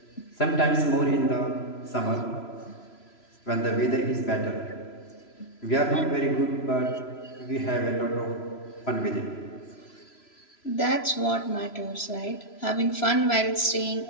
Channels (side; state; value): right; late; 3.0 ms